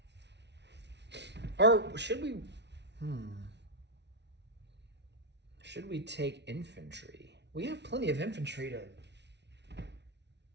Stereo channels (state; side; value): late; left; 0.50 ms